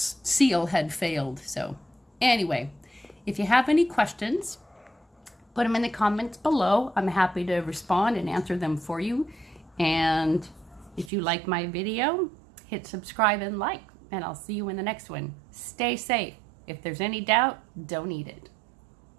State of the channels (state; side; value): drops out; left; at 11.1 s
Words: seal had failed. So anyway, if you have any questions, put them in the comments below. I'm happy to respond and answer them for you. And if you like my video, hit subscribe and like, and I'll see you in the next one. Stay safe. If there's any doubt, don't eat it.